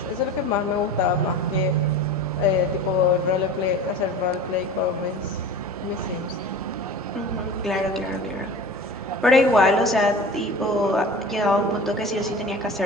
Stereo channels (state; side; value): normal; both; correlation 0.36